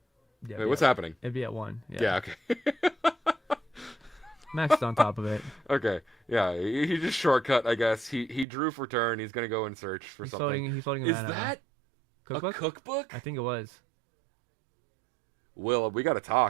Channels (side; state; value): left; drops out; at 8.5 s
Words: Yeah, Wait, what's happening? It'd be at 1. Yeah, okay. Max is on top of it. Okay, yeah, he just shortcut, I guess. He drew for turn. He's gonna go and search for something. He's floating Is that cookbook? a cookbook? I think it was. Will, we gotta